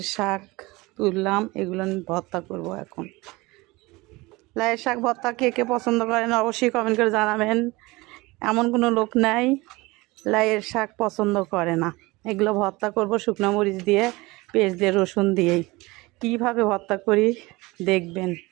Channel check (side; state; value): left; quieter; 22.4 dB